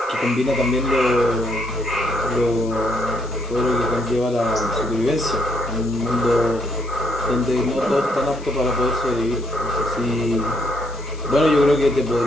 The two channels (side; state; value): left; noise; hiss, 22 dB below the sound